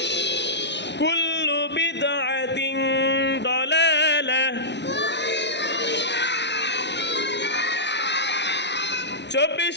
কুল্লু বিদআতিন দালালাহ 24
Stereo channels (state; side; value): late; right; 0.51 ms